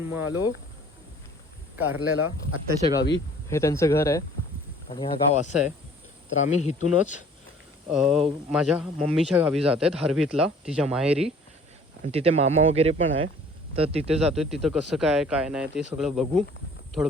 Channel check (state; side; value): normal; both; correlation 0.52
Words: मग आलो कारल्याला आत्याच्या गावी. हे त्यांचं घर आहे आणि हा गाव असं आहे. तर आम्ही इथूनच माझ्या मम्मीच्या गावी जात आहेत, हरवीतला, तिच्या माहेरी. आणि तिथे मामा वगैरे पण आहे, तर तिथे जातो आहे. तिथं कसं काय नाही ते सगळं बघू, थोडं